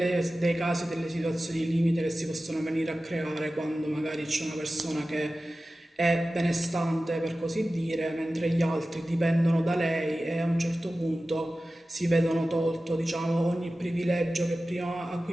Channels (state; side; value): normal; both; correlation 0.95